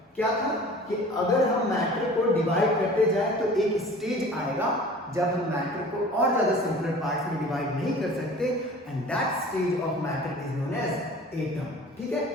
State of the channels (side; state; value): both; normal; correlation 0.44